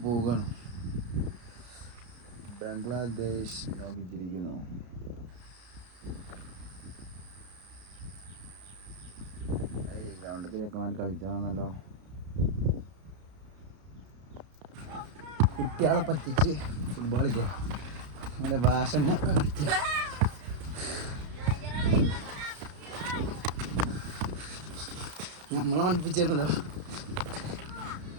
പോവുകയാണ്. ബംഗ്ലാദേശ് നോക്കിച്ചിരിക്കുന്നു. ഗ്രൗണ്ടിൽ ചെക്കന്മാർ കളിച്ചാണെന്നല്ലോ. കുട്ടികളെ പറ്റിച്ച് ഫുട്ബോൾ കളിക്കുക. അങ്ങനെ ഭാഷ കളിക്കുക. നമ്മളെ പഠിപ്പിച്ചിരുന്നല്ലോ.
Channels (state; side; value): late; left; 33 ms